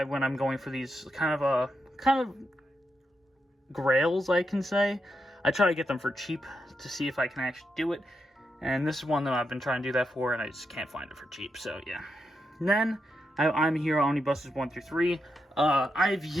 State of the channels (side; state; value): both; normal; correlation 0.84